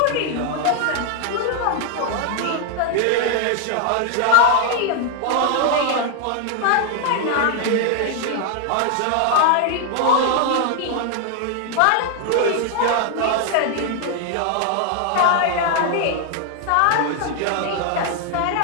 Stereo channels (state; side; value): different; both; correlation 0.00